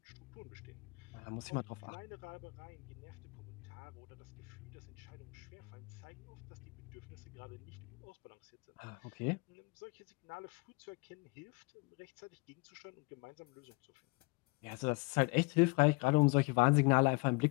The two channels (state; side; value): quieter; right; 29.2 dB